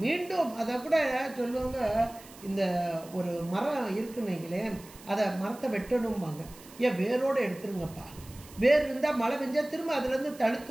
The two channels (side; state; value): right; noise; hiss, 20 dB below the sound